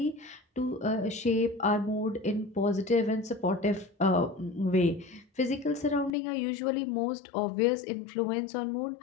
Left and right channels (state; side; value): drops out; right; at 6.1 s